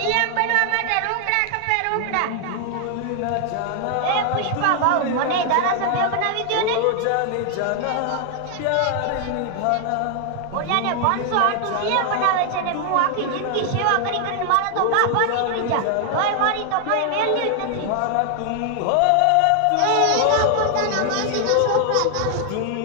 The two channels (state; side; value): different; both; correlation 0.00